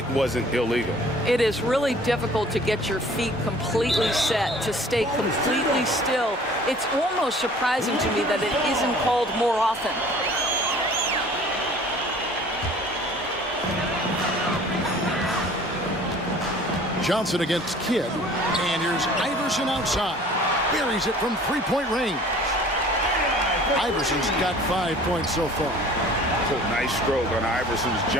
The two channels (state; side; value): normal; both; correlation 0.49